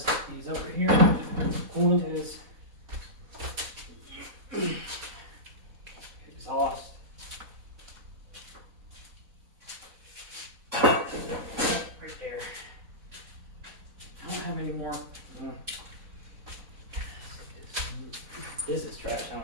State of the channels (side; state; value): left; late; 4.0 ms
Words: these over here. Coolant is exhaust. Right there. I don't have any more. This is trash. I